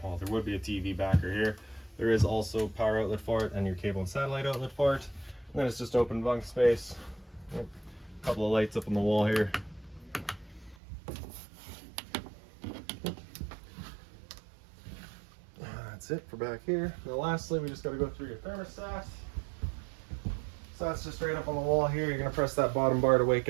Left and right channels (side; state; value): left; drops out; at 10.8 s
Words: well, there would be a TV backer here. There is also power outlet for it and your cable and satellite outlet for it. And then it's just open bunk space. A couple of lights up on the wall here. That's it for back here. Now lastly, we just got to go through your thermostat. So that's just right up on the wall here. You're going to press that bottom bar to wake